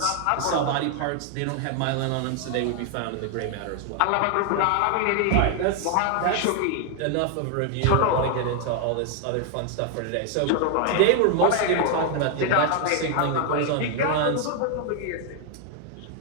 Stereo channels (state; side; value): different; both; correlation 0.00